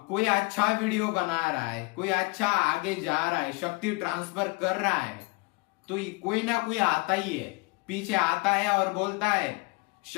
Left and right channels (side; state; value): right; quieter; 27.6 dB